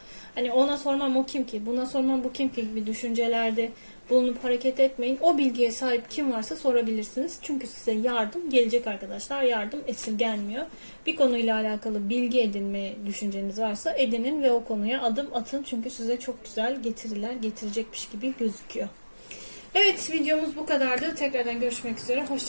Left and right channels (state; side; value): inverted; both; correlation -1.00